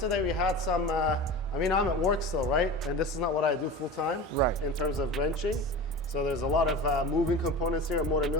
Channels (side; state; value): both; normal; correlation 0.32